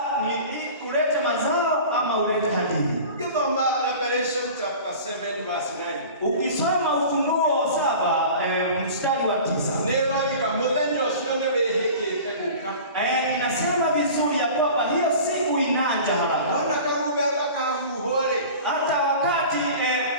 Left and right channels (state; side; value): inverted; both; correlation -0.39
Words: ni ulete mazao ama ulete hadithi. Revelation chapter 7 verse 9. Ukisoma Ufunuo 7 mstari wa 9. Inasema vizuri ya kwamba hiyo siku inaja haraka. Hata wakati